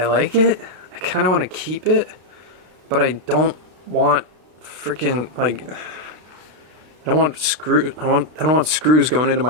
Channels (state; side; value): late; left; 32 ms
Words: like it. I kind of want to keep it, but I don't want freaking like I don't want screws going into my